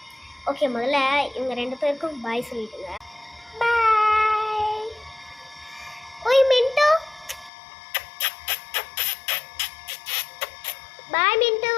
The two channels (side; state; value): right; drops out; at 7.5 s